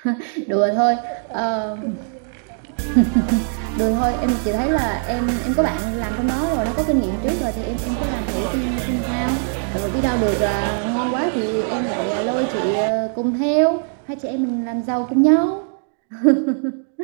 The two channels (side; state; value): left; silent; 65 dB below the other